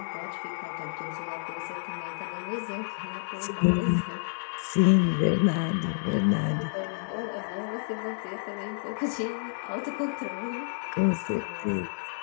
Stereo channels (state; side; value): silent; right; 58 dB below the other